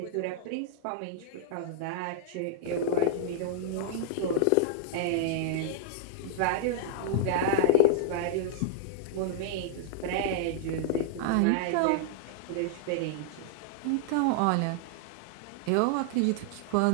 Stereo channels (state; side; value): different; both; correlation -0.01